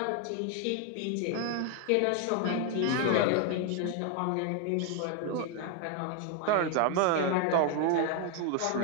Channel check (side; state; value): both; different; correlation 0.00